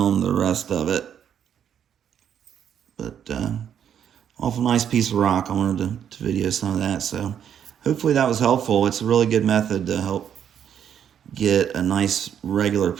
the rest of it, but awful nice piece of rock. I wanted to video some of that, so hopefully that was helpful. It's a really good method to help get a nice regular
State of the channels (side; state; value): left; quieter; 8.9 dB